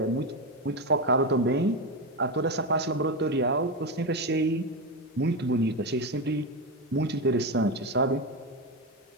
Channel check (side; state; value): both; normal; correlation 0.13